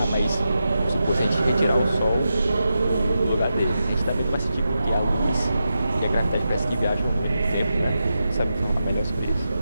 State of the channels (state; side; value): inverted; both; correlation -0.89